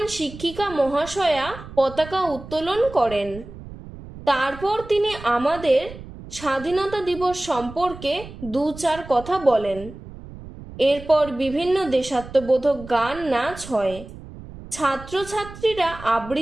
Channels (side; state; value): right; noise; rumble, 15 dB below the sound